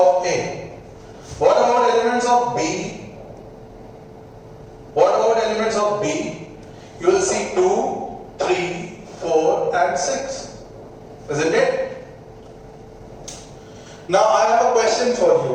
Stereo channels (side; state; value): both; identical; correlation 1.00